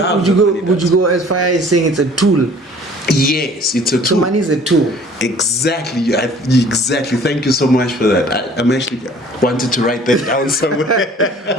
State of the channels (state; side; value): normal; both; correlation 0.51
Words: you go as far as saying it's a tool? Yes, it's a tool. So money is a tool. Exactly. Exactly. Thank you so much for that. I'm actually wanted to write that down somewhere.